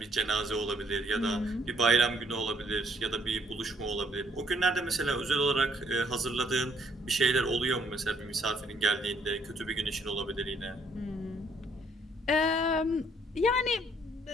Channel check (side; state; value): both; normal; correlation 0.66